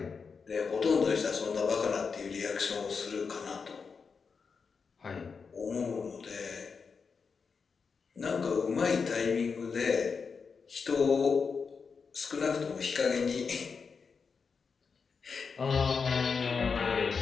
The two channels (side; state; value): right; quieter; 5.4 dB